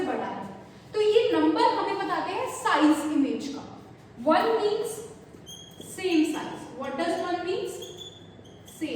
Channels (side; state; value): both; identical; correlation 1.00